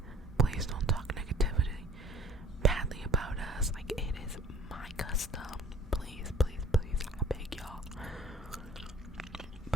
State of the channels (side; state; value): both; normal; correlation 0.52